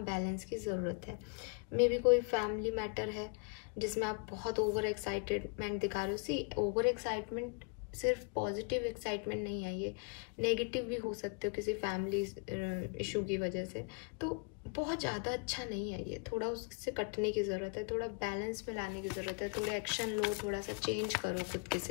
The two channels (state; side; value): quieter; right; 34.8 dB